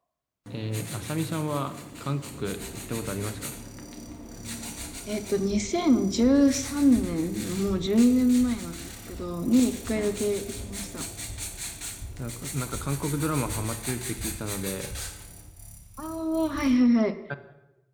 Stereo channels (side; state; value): both; identical; correlation 1.00